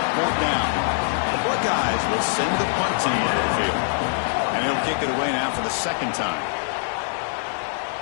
4th down. The Buckeyes will send the punt team onto the field. And he'll kick it away now for the 2nd time.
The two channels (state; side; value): silent; right; digital silence